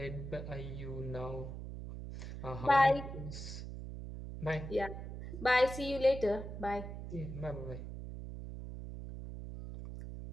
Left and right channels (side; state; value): right; noise; hum, 8 dB below the sound